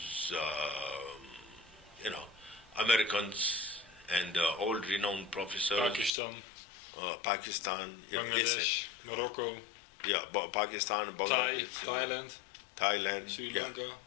Americans and old renowned professors. Pakistan, Bangladesh, Morocco. Yeah, Pakistan, Bangladesh, Thailand, Sri Lanka.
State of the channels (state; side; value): drops out; right; at 6.1 s